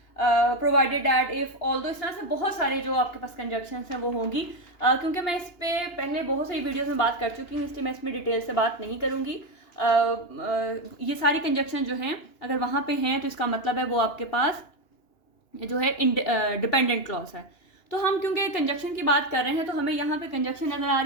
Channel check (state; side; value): late; right; 2.9 ms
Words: provided that, if, although, इस तरह से बहुत सारे जो आपके पास कंजक्शंस हैं वो होंगी। क्योंकि मैं इस पर पहले बहुत सारी वीडियोस में बात कर चुकी हूँ इसलिए मैं इसमें डिटेल से बात नहीं करूँगी। ये सारी कंजक्शन जो हैं अगर वहाँ पे हैं तो इसका मतलब है वो आपके पास जो है डिपेंडेंट क्लॉज है। तो हम क्योंकि कंजक्शन की बात कर रहे हैं तो हमें यहाँ पे कंजक्शन नज़र आ